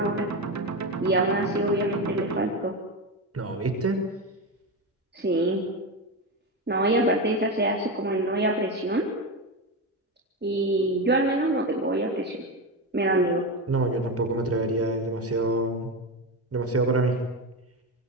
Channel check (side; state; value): both; normal; correlation 0.16